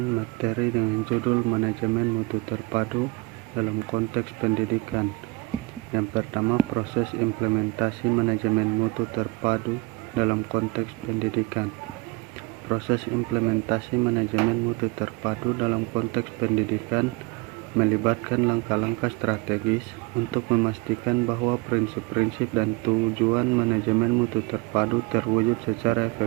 materi dengan judul manajemen mutu terpadu dalam konteks pendidikan. Yang pertama, proses implementasi manajemen mutu terpadu dalam konteks pendidikan. Proses implementasi manajemen mutu terpadu dalam konteks pendidikan melibatkan langkah-langkah strategis untuk memastikan bahwa prinsip-prinsip dan tujuan manajemen mutu terpadu terwujud secara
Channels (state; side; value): quieter; left; 23.7 dB